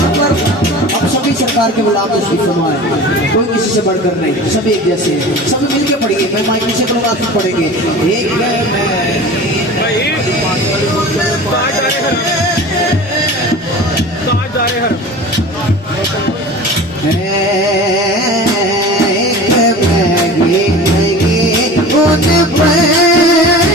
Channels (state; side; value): normal; both; correlation 0.37